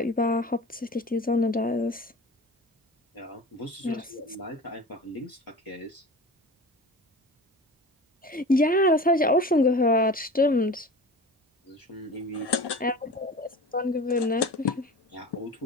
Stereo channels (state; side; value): normal; both; correlation 0.36